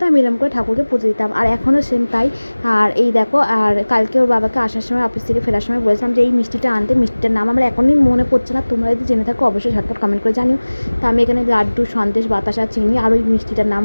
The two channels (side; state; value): both; inverted; correlation -1.00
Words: আমি এরকম করে ঠাকুরকে পুজো দিতাম, আর এখনও সেম তাই। আর এই দেখো, আর কালকে ওর বাবাকে আসার সময় অফিস থেকে ফেরার সময় বলেছিলাম যে এই মিষ্টিটা আনতে, মিষ্টিটার নাম আমার এখনই মনে পড়ছে না, তোমরা যদি জেনে থাকো অবশ্যই ঝটপট কমেন্ট করে জানিও। তো আমি এখানে লাড্ডু, সন্দেশ, বাতাসা, চিনি আর ওই মিষ্টিটার নাম